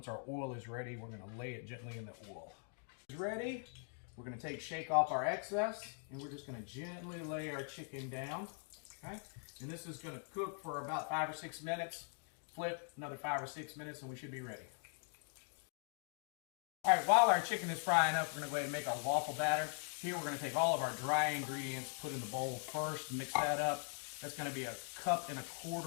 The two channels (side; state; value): right; silent; 50 dB below the other